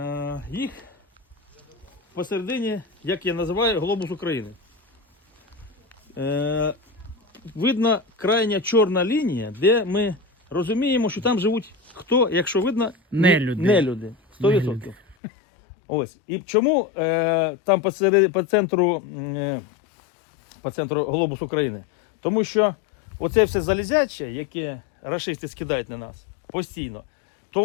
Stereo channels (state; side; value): drops out; right; at 15.2 s